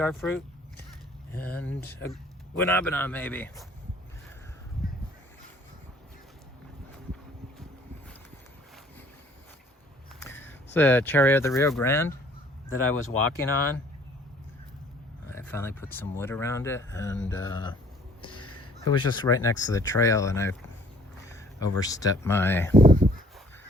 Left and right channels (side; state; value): both; normal; correlation 0.57